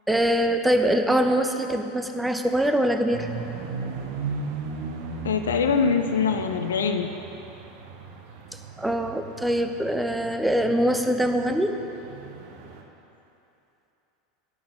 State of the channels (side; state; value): both; normal; correlation 0.49